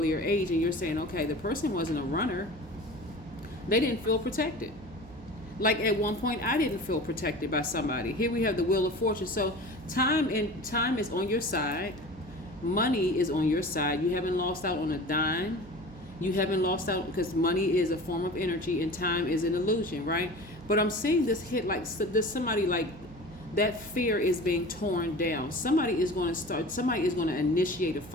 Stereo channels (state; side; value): noise; right; hum, 19 dB below the sound